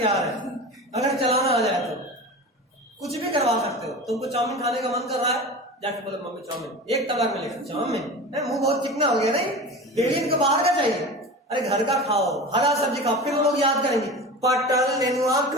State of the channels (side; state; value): both; normal; correlation 0.32